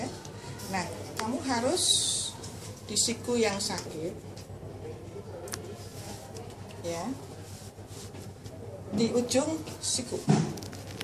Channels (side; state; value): both; identical; correlation 1.00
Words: ya. Nah, kamu harus di siku yang sakit, ya, di ujung siku.